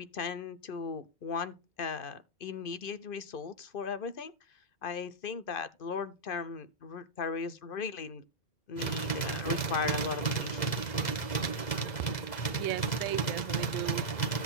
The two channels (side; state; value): right; late; 2.0 ms